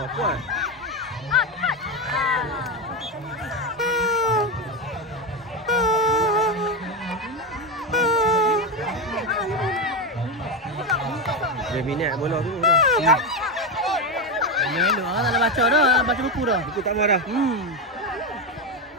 Wah, kuat. Dia minat bola tu dah. Melo, tak nak baca dah, baca buku dah. Buku tak mau dah.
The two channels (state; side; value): normal; both; correlation 0.12